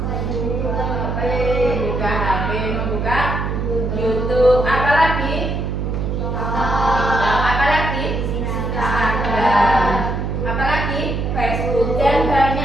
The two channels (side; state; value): right; noise; hum, 1 dB below the sound